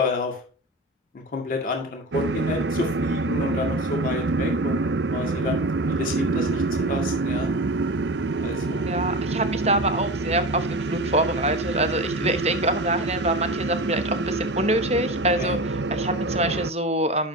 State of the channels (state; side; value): normal; both; correlation 0.28